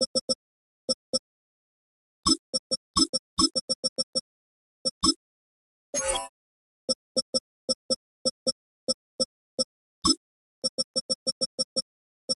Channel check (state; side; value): identical; both; correlation 1.00